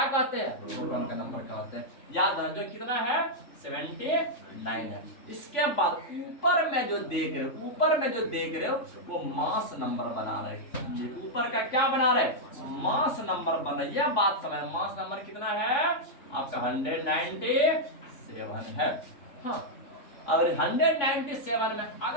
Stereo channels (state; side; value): late; right; 3.5 ms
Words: कहते हैं? प्रोटॉन का नंबर कहते हैं। याद है जो कितना है 79 है। इसके बाद ऊपर में जो देख रहे हो वो मास नंबर बना रहे हैं। ऊपर का क्या बना रहे हैं? मास नंबर बना। यह बात समझ, मास नंबर कितना है आपका 197 है। हाँ, अगर 197 में